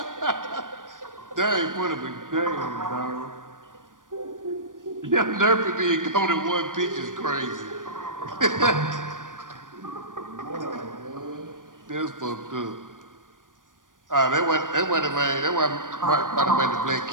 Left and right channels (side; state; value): left; late; 0.88 ms